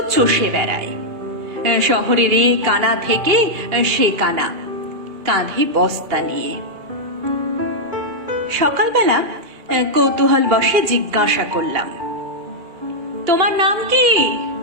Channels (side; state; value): left; late; 2.3 ms